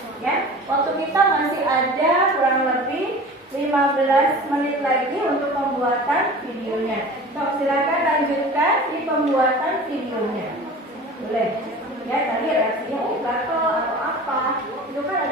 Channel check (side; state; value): both; normal; correlation 0.38